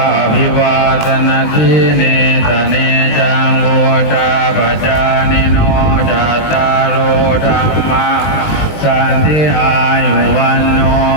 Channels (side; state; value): right; late; 20 ms